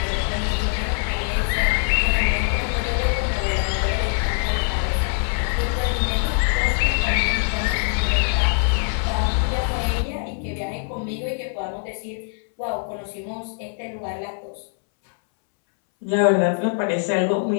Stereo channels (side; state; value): right; silent; 64 dB below the other